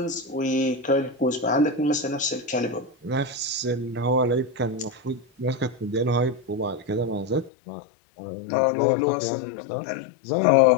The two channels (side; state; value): right; drops out; at 7.5 s